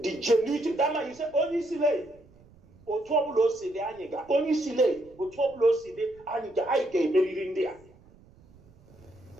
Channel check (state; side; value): noise; right; rumble, 27 dB below the sound